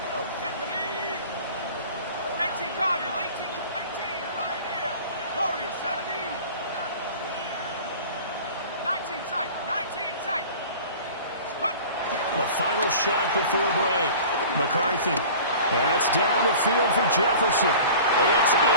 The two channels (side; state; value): both; inverted; correlation -0.41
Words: Final shot before break. McCarthy. That's down the field for Jefferson. It's